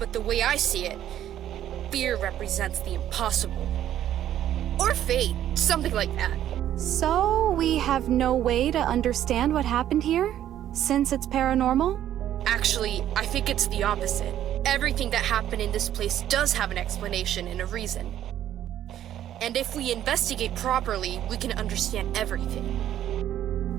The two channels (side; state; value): left; quieter; 11.5 dB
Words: the way I see it, fear represents the impossible. Or fate, something like that. So, we have no way to understand what happened here? Since it's paranormal? Actually, I think it's the opposite. Everything that happened in this place does have an explanation and a reason. And if we investigate properly, we can understand everything.